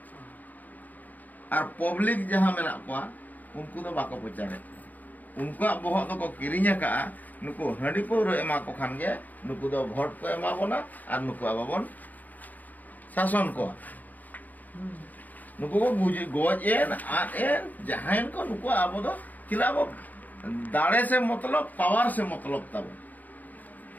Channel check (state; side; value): late; right; 0.081 ms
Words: और पब्लिक जहाँ में ना पा उनको तो बाको पचारे उनको बहुत तो को किरिंग का नुको हंडी पौर एमा को खान गे नुको दो भोट को एमा बोना और नुको आबाबन शासन को नुको को गुज गोज एन आन एन जहाँ को नुको आबो दो चिला वो दाड़े से मतलब पावर से मतलब तब